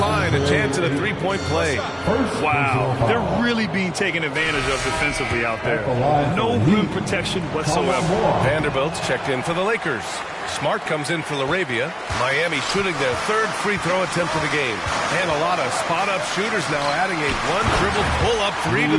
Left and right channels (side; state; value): both; identical; correlation 1.00